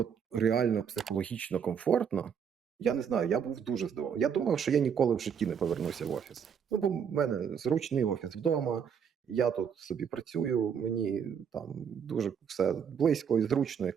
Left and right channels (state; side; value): quieter; left; 7.4 dB